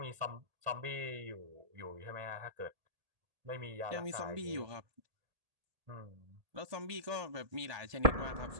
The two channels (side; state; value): left; late; 1.8 ms